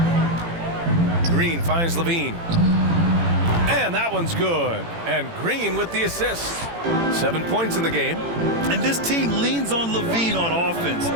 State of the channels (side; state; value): left; late; 18 ms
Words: Green finds LaVine. And that one's good. And Green with the assist. 7 points in the game. And this team leans on LaVine on offense.